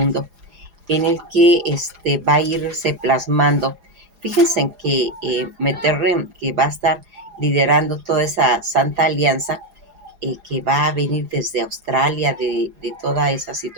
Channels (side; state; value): left; late; 4.9 ms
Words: en el que va a irse plasmando. Fíjense en que Mitterrand, que va a estar liderando toda esa Santa Alianza, que va a venir desde Australia, de toda esa